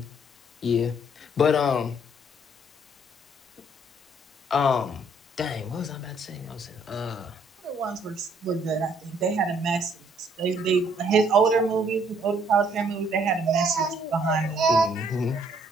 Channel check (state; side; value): normal; both; correlation 0.65